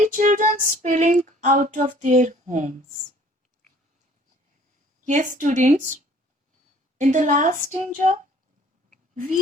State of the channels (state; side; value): normal; both; correlation 0.54